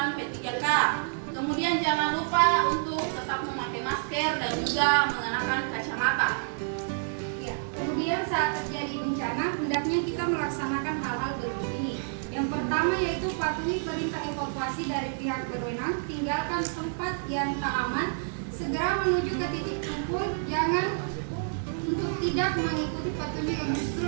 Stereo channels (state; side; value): silent; left; 59 dB below the other